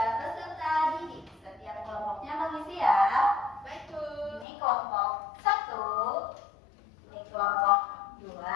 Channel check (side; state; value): right; drops out; at 4.5 s